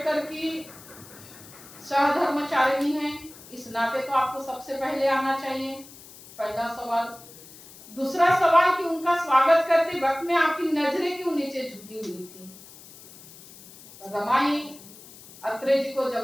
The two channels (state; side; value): noise; left; hiss, 20 dB below the sound